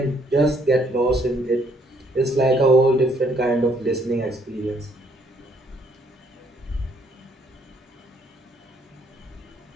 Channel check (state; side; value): normal; both; correlation 0.67